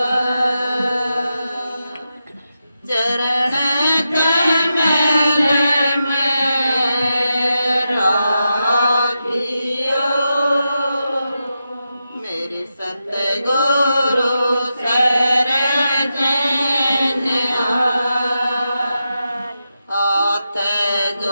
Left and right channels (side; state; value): both; inverted; correlation -0.88